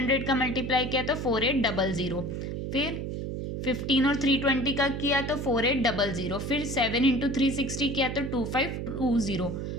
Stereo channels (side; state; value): right; noise; hum, 4 dB below the sound